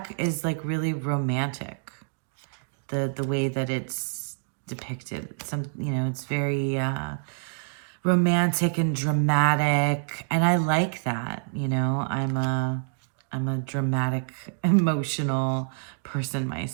is like really romantic. The way that it's depicted. It's very romantic and dramatic, and I like that. I'm a dramatic, emotional person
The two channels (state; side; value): silent; left; digital silence